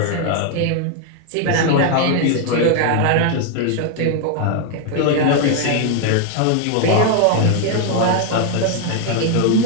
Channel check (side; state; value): both; different; correlation 0.00